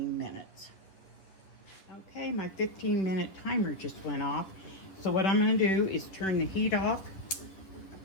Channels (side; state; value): right; late; 11 ms